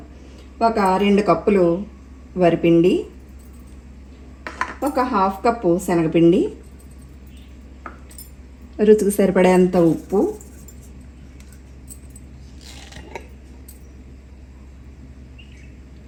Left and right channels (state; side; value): identical; both; correlation 1.00